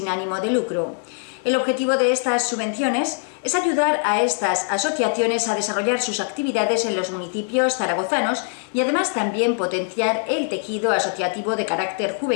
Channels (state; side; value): silent; right; 58 dB below the other